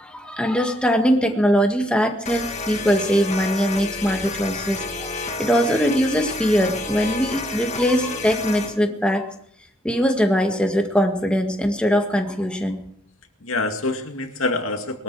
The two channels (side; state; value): both; normal; correlation 0.73